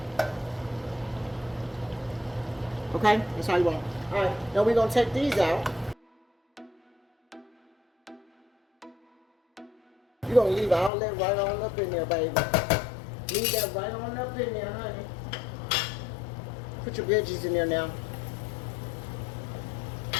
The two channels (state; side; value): drops out; right; at 10.9 s